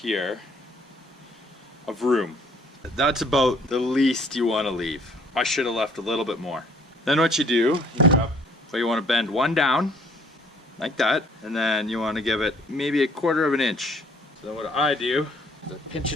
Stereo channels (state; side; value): normal; both; correlation 0.60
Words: of room. That's about the least you want to leave. I should have left a little bit more. Then what you do, you want to bend one down, like that, and then you want to give it maybe 1/4 inch. So then what I do is I pinch